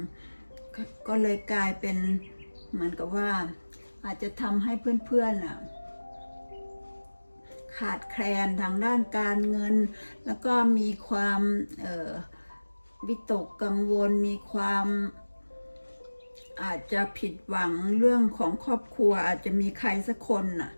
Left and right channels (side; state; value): both; inverted; correlation -1.00